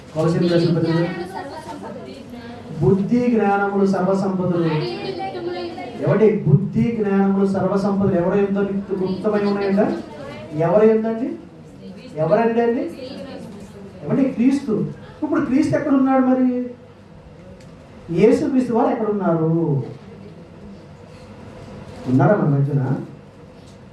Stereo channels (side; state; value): both; identical; correlation 1.00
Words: కొలసీలకు రాసిన పత్రిక, బుద్ధి జ్ఞానములు సర్వసంపదలు. ఎవడి బుద్ధి జ్ఞానములు సర్వసంపదలు ఎవరు ఎంతో గుప్తమై ఉన్నాయంట? ఎవరు ఏందండి? ఎవరండి అండి? ఏమంటే క్రీస్తు. ఇప్పుడు క్రీస్తు ఎక్కడున్నాడు? మరి యేసు క్రీస్తు వారు ఎక్కడున్నారు? ఉన్నారా మన మధ్యన?